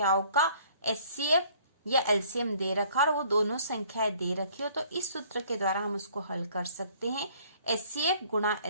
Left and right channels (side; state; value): both; inverted; correlation -0.58